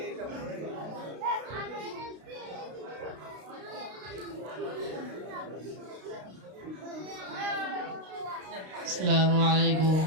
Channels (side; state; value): left; late; 32 ms